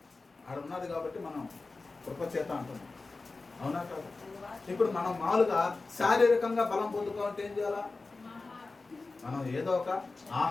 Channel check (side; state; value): right; quieter; 3.7 dB